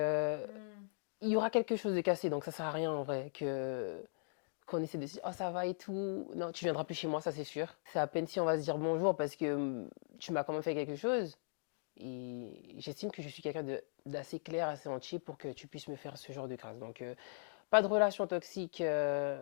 il y aura quelque chose de cassé, donc ça sert à rien en vrai que qu'on essaie de se dire oh ça va et tout. Non, tu viendras plus chez moi, ça c'est sûr. C'est à peine si on va se dire bonjour parce que tu m'as quand même fait quelque chose. Et j'estime que je suis quelqu'un d'assez clair, assez entier pour que tu puisses me faire ce genre de crasse. Donc, pas de relation toxique.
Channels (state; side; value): silent; right; digital silence